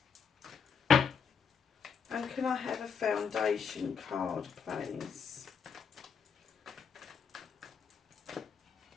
And can I have a foundation card, please?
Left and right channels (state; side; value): quieter; right; 6.5 dB